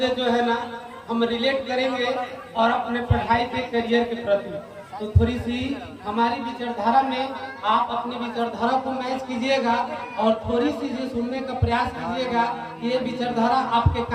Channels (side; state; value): both; identical; correlation 1.00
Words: जो है ना हम रिलेट करेंगे और अपने पढ़ाई के करियर के प्रति। तो थोड़ी सी हमारी विचारधारा में आप अपनी विचारधारा को मैच कीजिएगा और थोड़ी सी जो सुनने का प्रयास कीजिएगा कि ये विचारधारा आपके